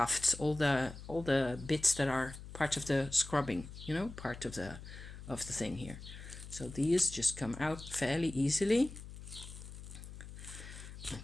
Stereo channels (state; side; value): noise; left; hum, 13 dB below the sound